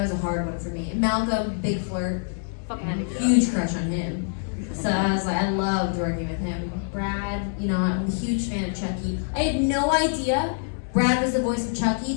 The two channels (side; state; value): right; silent; digital silence